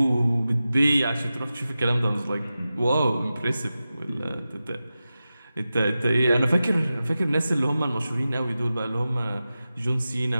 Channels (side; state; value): both; inverted; correlation -0.94